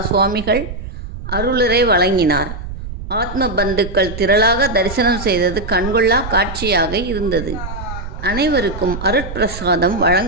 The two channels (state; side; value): noise; right; rumble, 9 dB below the sound